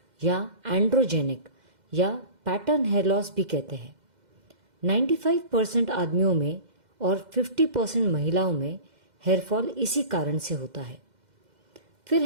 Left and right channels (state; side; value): late; left; 2.1 ms